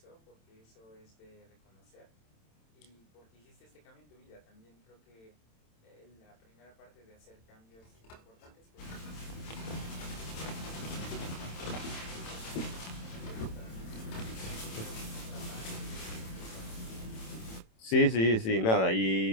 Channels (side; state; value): right; late; 27 ms